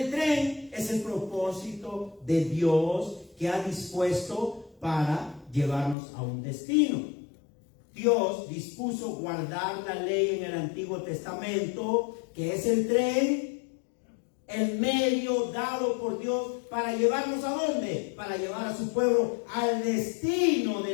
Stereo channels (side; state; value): right; drops out; at 6.0 s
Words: tren es el propósito de Dios que ha dispuesto para llevarnos a un destino. Dios dispuso guardar la ley en el Antiguo Testamento, que es el tren, el medio dado por Dios para llevarnos ¿a dónde? Para llevar a su pueblo al destino